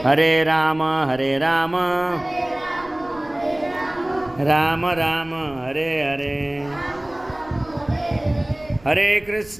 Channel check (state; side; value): noise; right; rumble, 23 dB below the sound